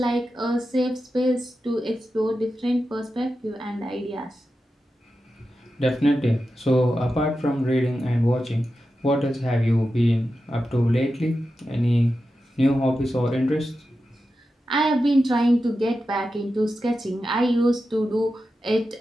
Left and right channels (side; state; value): both; normal; correlation 0.91